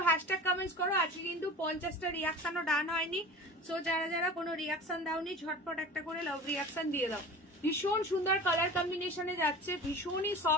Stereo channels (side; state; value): both; normal; correlation 0.37